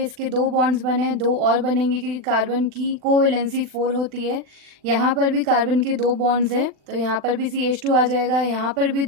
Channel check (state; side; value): late; left; 40 ms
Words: इसके 2 बॉन्ड्स बने, 2 और बनेंगे क्योंकि कार्बन की कोवैलेंसी 4 होती है। यहाँ पर भी कार्बन के 2 बॉन्ड्स हैं तो यहाँ पर भी CH2 आ जाएगा, यहाँ पर भी